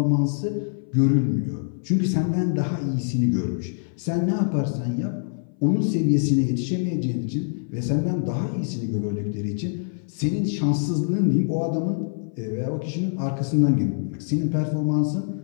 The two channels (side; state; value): right; silent; 59 dB below the other